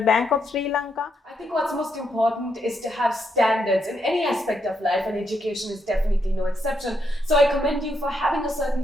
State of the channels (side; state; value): both; normal; correlation 0.79